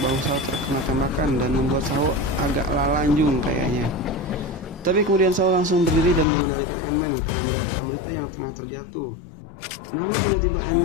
bahu Saho terkena tembakan dan membuat Saho agak lalanjung kayaknya. Tapi kemudian Saho langsung berdiri dan mengendalikan Ant-Man karena melihat Amrita yang tengah terjatuh. Namun tiba-tiba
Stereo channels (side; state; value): right; drops out; at 6.2 s